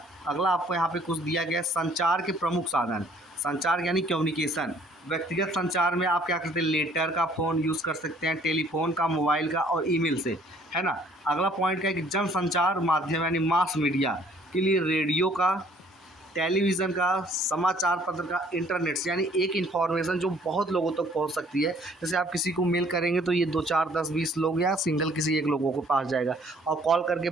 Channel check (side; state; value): both; normal; correlation 0.59